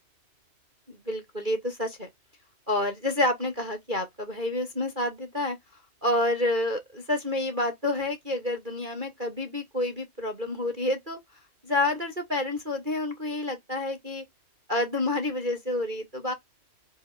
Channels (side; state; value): left; late; 2.4 ms